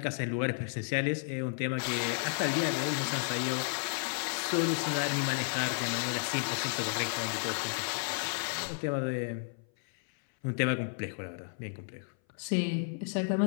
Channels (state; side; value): silent; right; 56 dB below the other